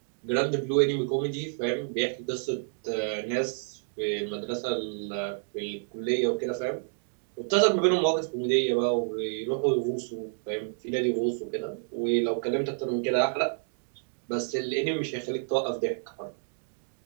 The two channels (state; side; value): silent; left; digital silence